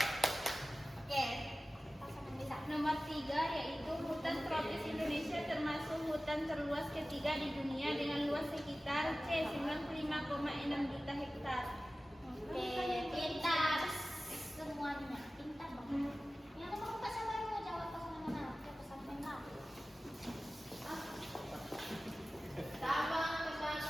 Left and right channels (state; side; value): normal; both; correlation 0.96